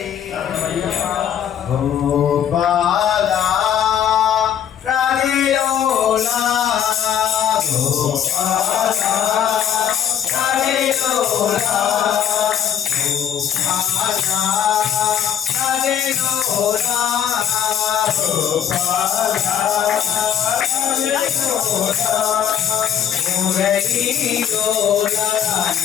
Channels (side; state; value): right; quieter; 9.3 dB